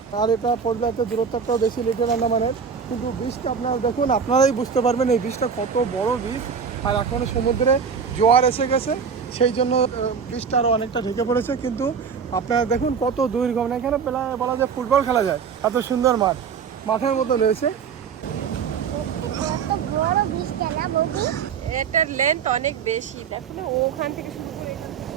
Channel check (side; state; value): left; quieter; 6.4 dB